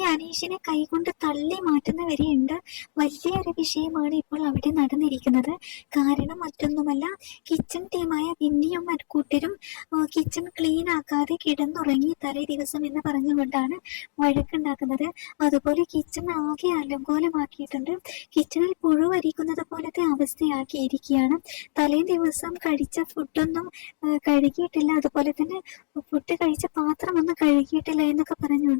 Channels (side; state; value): right; silent; digital silence